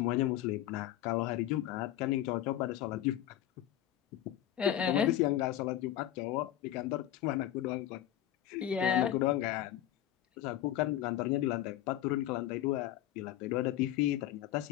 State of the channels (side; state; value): right; quieter; 12.6 dB